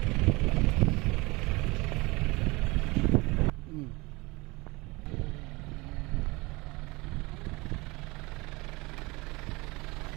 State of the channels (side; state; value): left; quieter; 23.9 dB